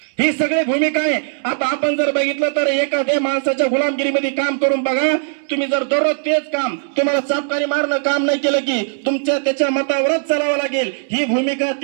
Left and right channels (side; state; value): left; silent; 67 dB below the other